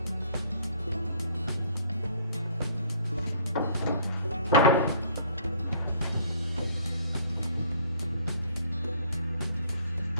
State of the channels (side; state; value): both; inverted; correlation -0.58